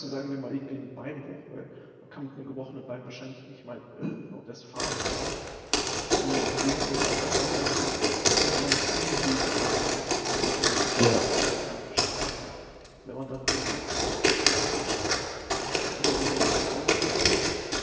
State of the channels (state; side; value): identical; both; correlation 1.00